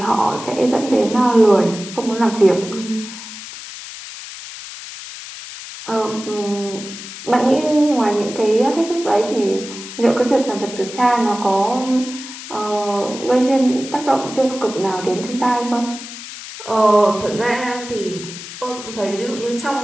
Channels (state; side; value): noise; left; hiss, 12 dB below the sound